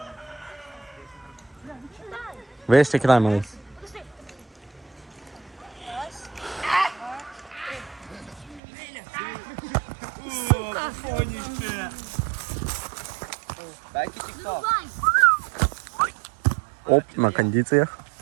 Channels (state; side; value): drops out; left; at 8.6 s